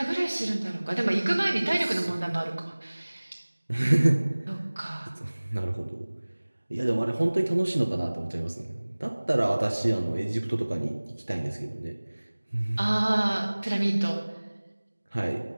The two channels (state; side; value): inverted; both; correlation -1.00